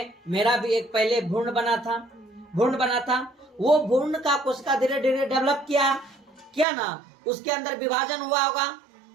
मेरा भी एक पहले भ्रूण बना था, वो भ्रूण का कोशिका धीरे धीरे डेवलप किया ना, उसके अंदर विभाजन हुआ होगा।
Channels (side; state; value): left; drops out; at 6.7 s